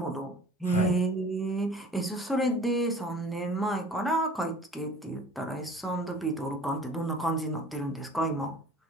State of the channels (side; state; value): both; normal; correlation 0.46